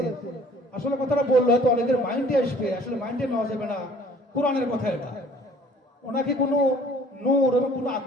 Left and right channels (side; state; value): both; normal; correlation 0.53